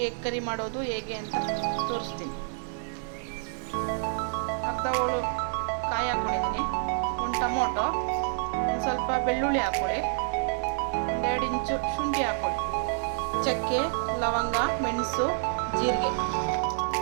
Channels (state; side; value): silent; left; digital silence